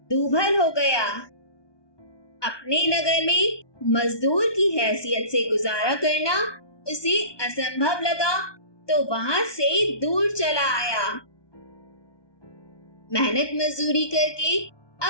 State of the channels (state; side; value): late; right; 1.2 ms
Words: दूभर हो गया। अपने नगर में मजदूर की हैसियत से गुजारा करना उसे असंभव लगा, तो वहां से दूर चला आया। मेहनत मजदूरी करके